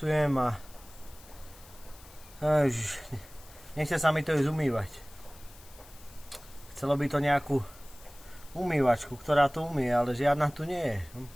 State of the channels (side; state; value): left; noise; hiss, 22 dB below the sound